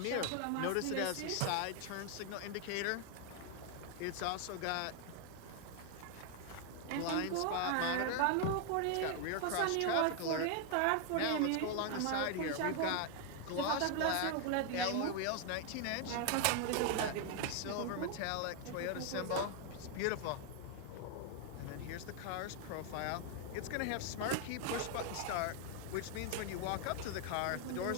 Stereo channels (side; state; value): both; different; correlation 0.00